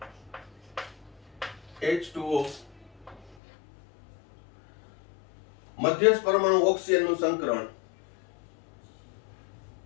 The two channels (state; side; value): drops out; right; at 3.4 s